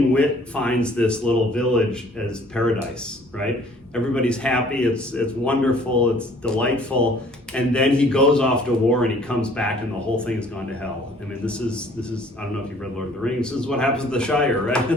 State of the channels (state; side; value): normal; both; correlation 0.55